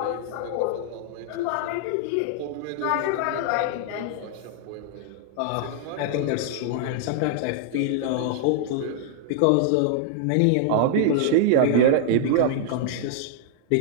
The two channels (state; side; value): different; both; correlation -0.01